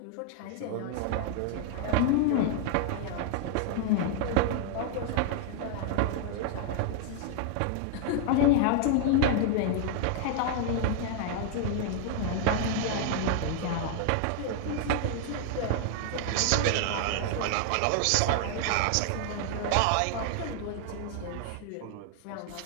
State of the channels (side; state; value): both; different; correlation 0.00